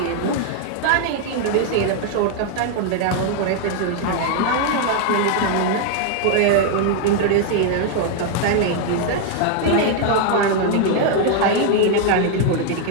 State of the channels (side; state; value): both; different; correlation 0.00